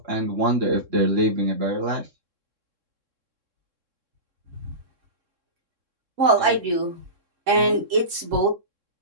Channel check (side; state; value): left; late; 3.7 ms